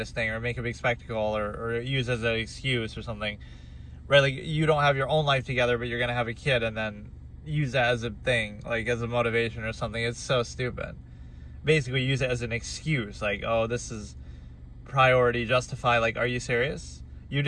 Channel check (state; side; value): identical; both; correlation 1.00